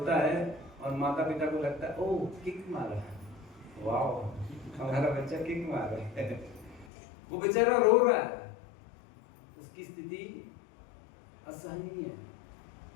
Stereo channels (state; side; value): drops out; right; at 6.9 s